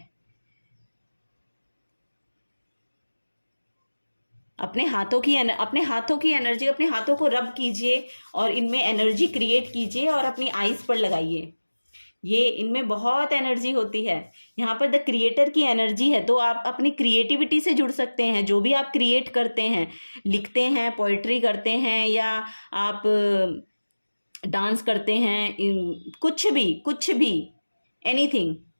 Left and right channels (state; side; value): inverted; both; correlation -1.00